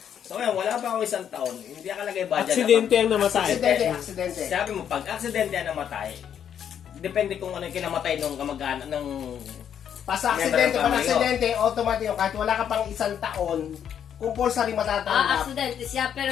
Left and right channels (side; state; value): right; quieter; 8.9 dB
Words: So ngayon, wala pa ako 1 taon, hindi nakalagay budget. Aksidente ang namatay. Aksidente. Sabi mo, pag aksidente ang namatay, depende kung ano yung kinamatay nung kamag-anak ng... Aksidente, automatic, kahit wala ka pang 1 taon, compulsory matatanggap. Aksidente siya,